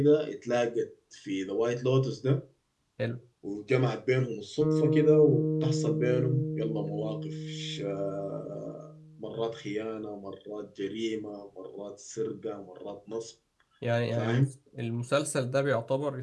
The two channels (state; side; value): identical; both; correlation 1.00